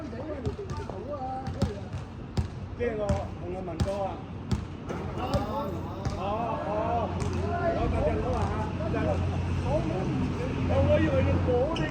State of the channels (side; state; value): both; identical; correlation 1.00